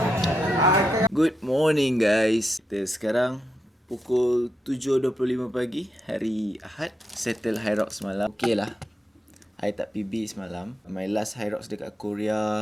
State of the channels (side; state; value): both; normal; correlation 0.84